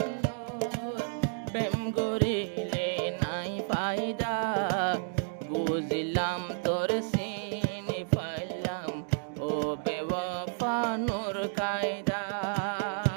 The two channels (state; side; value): silent; left; digital silence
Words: প্রেম করিলে নাই ফায়দা বুঝিলাম তোর চিনি পাইলাম ও বেওয়াফা নূর কায়দা